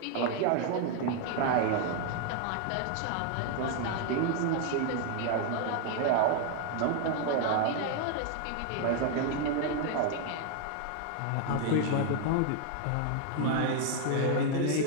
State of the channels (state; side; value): different; both; correlation 0.00